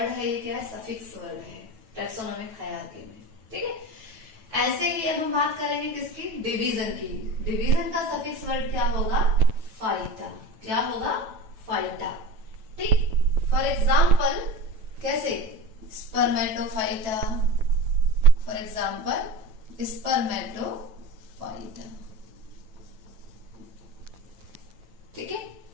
है ये क्या है, सफिक्स वर्ड है टैक्सोनॉमिक हायरार्की में, ठीक है। ऐसे ही अब हम बात करेंगे किसकी, डिवीजन की। डिवीजन का सफिक्स वर्ड क्या होगा, फाइटा। क्या होगा, फाइटा, ठीक। फॉर एग्जाम्पल कैसे, Spermatophyta, for example Spermatophyta,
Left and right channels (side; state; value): left; late; 9.1 ms